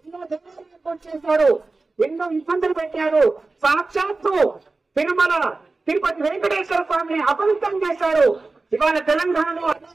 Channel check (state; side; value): quieter; left; 3.6 dB